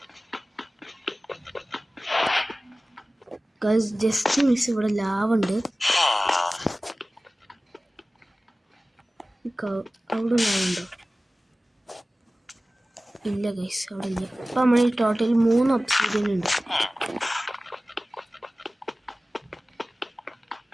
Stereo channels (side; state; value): both; normal; correlation 0.97